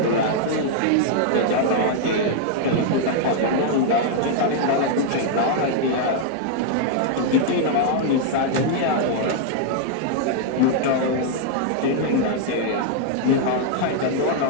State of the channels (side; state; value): both; different; correlation 0.00